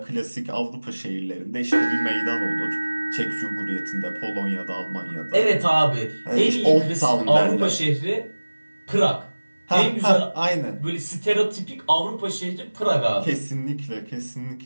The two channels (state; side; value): inverted; both; correlation -1.00